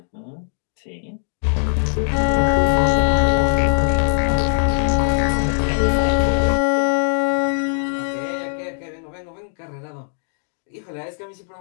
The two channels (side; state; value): right; silent; digital silence